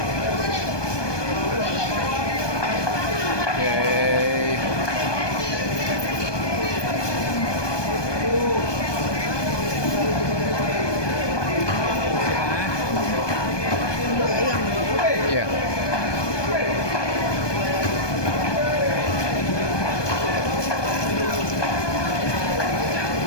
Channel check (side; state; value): right; late; 1.2 ms